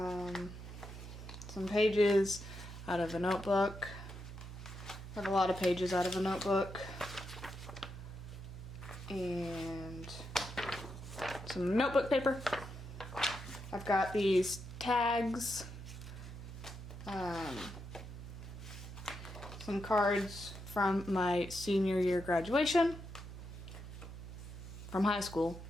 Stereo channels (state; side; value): noise; right; hum, 11 dB below the sound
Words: pages out of a notebook. I have a lot of pages out of a notebook. And some notebook paper. I've got these tags. Some cards from my senior year graduation from high school,